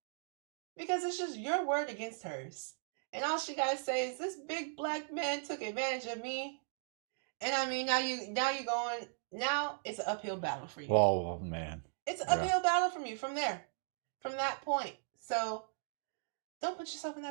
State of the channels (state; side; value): silent; left; digital silence